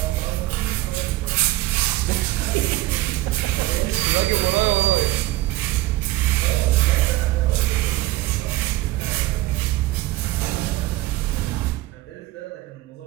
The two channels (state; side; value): quieter; left; 17.4 dB